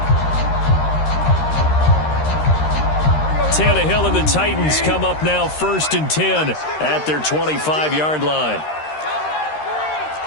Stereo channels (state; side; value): late; right; 13 ms